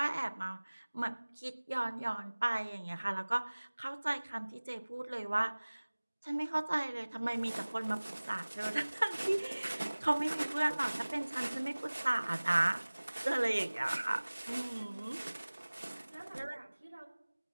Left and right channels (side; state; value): both; inverted; correlation -1.00